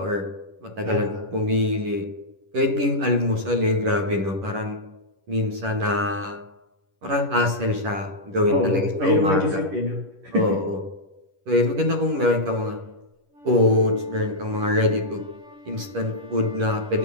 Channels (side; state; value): left; late; 10 ms